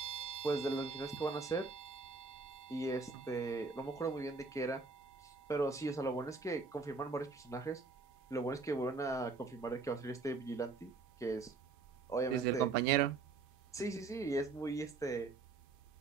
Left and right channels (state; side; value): quieter; left; 4.1 dB